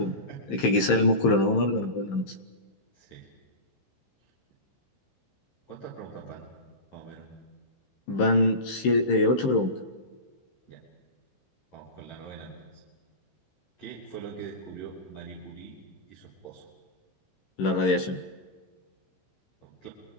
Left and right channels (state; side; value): late; right; 15 ms